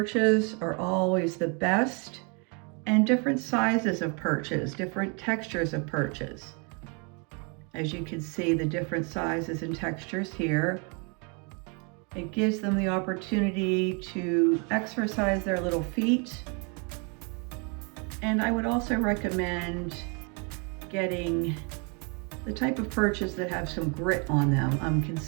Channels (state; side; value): quieter; left; 34.5 dB